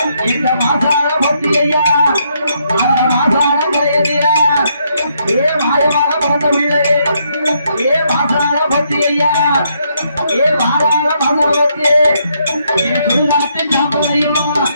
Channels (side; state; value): both; inverted; correlation -0.74